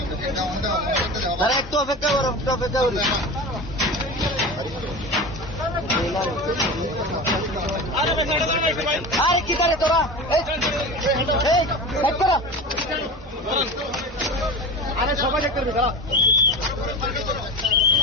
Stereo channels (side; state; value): both; normal; correlation 0.29